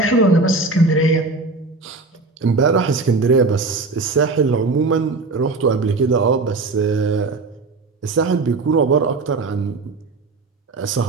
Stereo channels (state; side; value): quieter; left; 3.7 dB